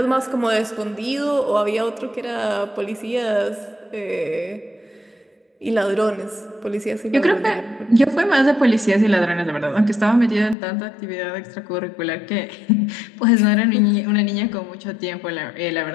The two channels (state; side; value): drops out; right; at 10.6 s